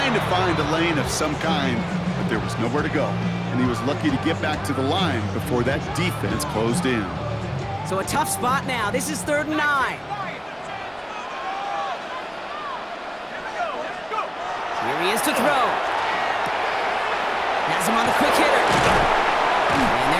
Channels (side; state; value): both; identical; correlation 1.00